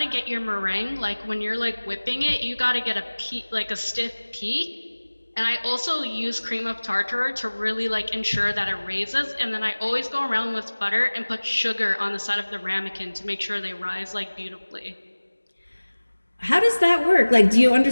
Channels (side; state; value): both; inverted; correlation -1.00